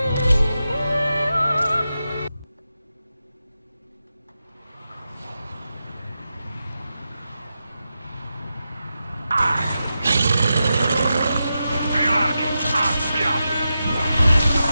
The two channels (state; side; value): inverted; both; correlation -0.89